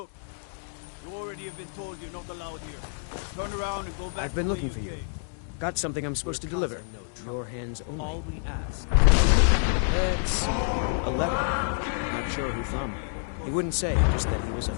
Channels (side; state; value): right; silent; digital silence